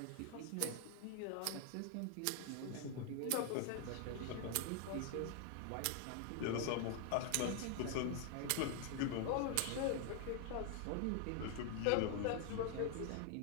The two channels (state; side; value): different; both; correlation 0.00